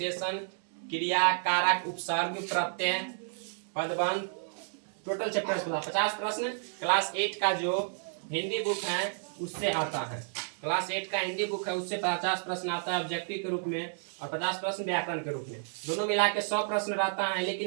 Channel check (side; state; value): left; silent; digital silence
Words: क्रिया, कारक, उपसर्ग, प्रत्यय, पदबंध, टोटल चैप्टर 50 प्रश्न क्लास 8 का जो हिंदी बुक है उससे आता है। क्लास 8 का हिंदी बुक है उससे 50 प्रश्न आता है ऑब्जेक्टिव के रूप में, और 50 प्रश्न व्याकरण के रूप में। दोनों मिला के 100 प्रश्न रहता है,